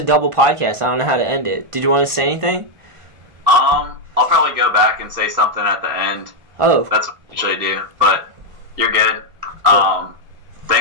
double podcast. I don't know how to end it. Did you want to say anything? I'll probably go back and say something at the end. Oh. That's what I usually do, but you're good. Cool.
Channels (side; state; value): left; late; 1.5 ms